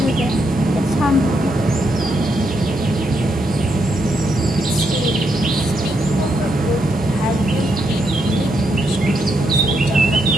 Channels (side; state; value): left; noise; hum, 20 dB below the sound